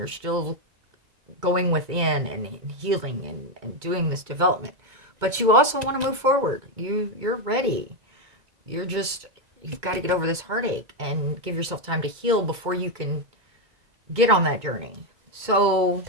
still going within and healing and doing this development. But you also want to move forward. You're ready. You've got to get over this heartache and give yourself time to heal before you can get on that journey. So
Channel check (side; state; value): left; late; 2.2 ms